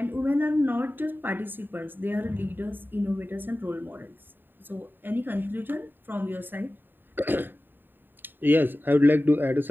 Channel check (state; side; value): late; left; 0.094 ms